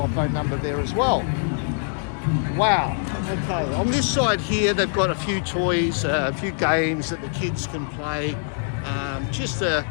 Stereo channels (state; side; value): silent; right; digital silence